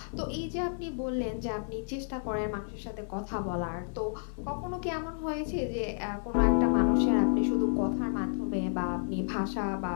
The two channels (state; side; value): silent; right; 57 dB below the other